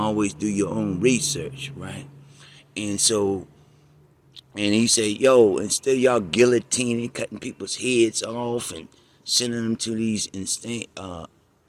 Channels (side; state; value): both; identical; correlation 1.00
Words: do your own research, right? And so, and he said, yo, instead of y'all guillotining, cutting people's heads off and sending them to these